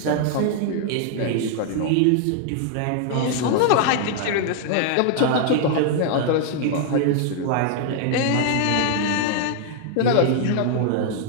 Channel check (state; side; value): different; both; correlation 0.00